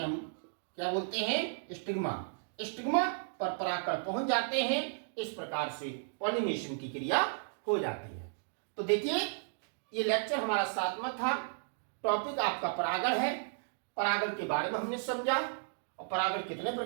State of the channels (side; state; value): left; silent; digital silence